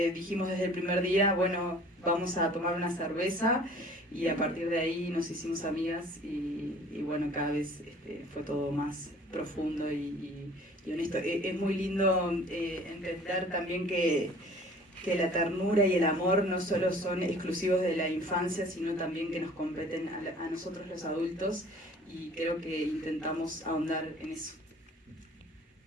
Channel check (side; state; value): both; normal; correlation 0.50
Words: desde el primer día, bueno, vamos a tomar una cerveza y a partir de ahí nos hicimos amigas y bueno, cada vez fue todo más profundo y honesto. Es muy lindo entender también que la ternura y el amor no solo son exclusivos de la infancia, sino también que nos competen a nosotros los adultos y creo que intentamos ahondar en eso.